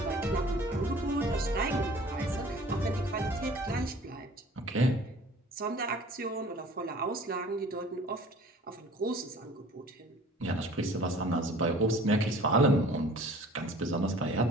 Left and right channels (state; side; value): normal; both; correlation 0.48